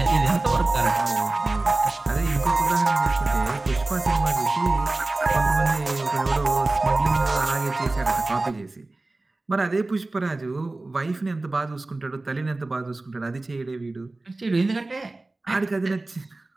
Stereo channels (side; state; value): left; quieter; 3.1 dB